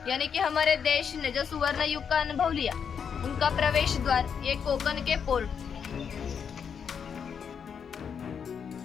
यानी कि हमारे देश ने जो सुवर्ण युग का अनुभव लिया, उनका प्रवेश द्वार ये कोकण के पोर्ट।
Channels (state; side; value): quieter; right; 7.1 dB